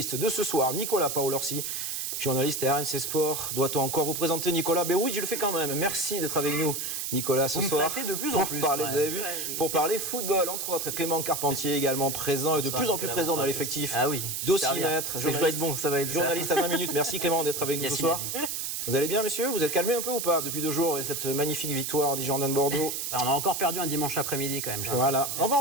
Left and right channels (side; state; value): right; noise; hiss, 3 dB below the sound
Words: de ce soir, Nicolas Paolorsi, journaliste à RMC Sport. Doit-on encore vous présenter Nicolas? Ben oui, je le fais quand même. Merci d'être avec nous, Nicolas, ce soir. De plus en plus. Parler, vous avez vu, pour parler football, entre autres. Clément Carpentier également présent et de plus en plus présent dans l'effectif. Ah oui. D'Aussi Maître. Je vais être bon, ça va être journaliste à 20 minutes. Merci Clément d'être avec nous ce soir. Vous allez bien, messieurs? Vous êtes calmés un peu ou pas depuis 2 jours et cette magnifique victoire des Girondins de Bordeaux? On a encore perdu un dimanche après-midi quand même. Voilà, on va